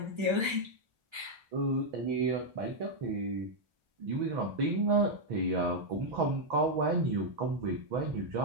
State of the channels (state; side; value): late; left; 1.3 ms